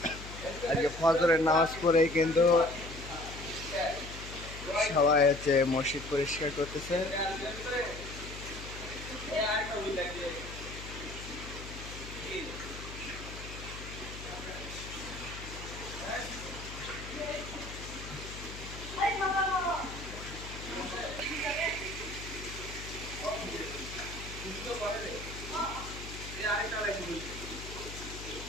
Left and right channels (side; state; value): left; noise; hum, 11 dB below the sound